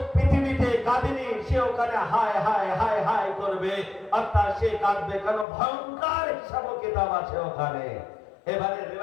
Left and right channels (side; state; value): right; drops out; at 5.5 s